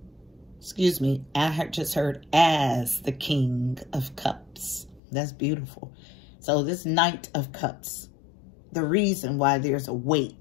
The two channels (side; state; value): right; drops out; at 5.0 s